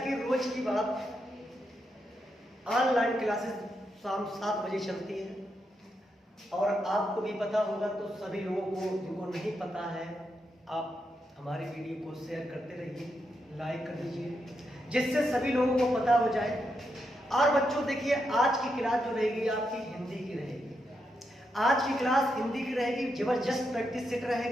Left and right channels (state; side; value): normal; both; correlation 0.83